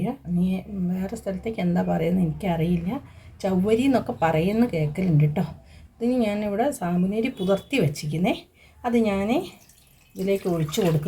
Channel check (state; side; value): identical; both; correlation 1.00